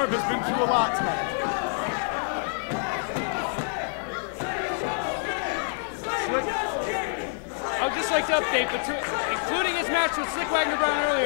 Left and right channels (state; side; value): silent; right; 60 dB below the other